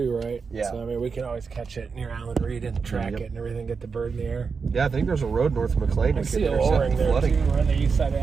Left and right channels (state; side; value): quieter; left; 5.3 dB